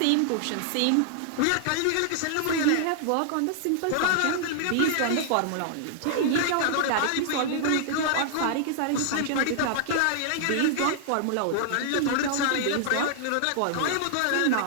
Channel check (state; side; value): different; both; correlation -0.01